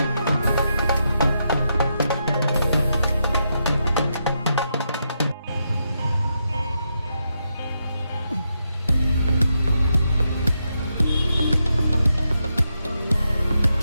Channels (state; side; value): inverted; both; correlation -0.83